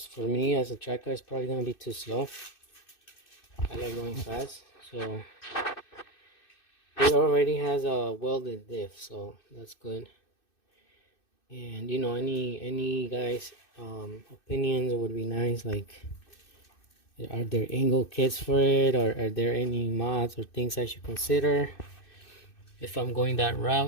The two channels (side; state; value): right; late; 2.6 ms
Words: for me as a track car it's probably gonna be too slow. I like going fast, so it already has a welded diff, so that's good. And you know, any guys opinions would be nice. Like, are there angle kits for it, or are there any mods or things I should consider if I'm going that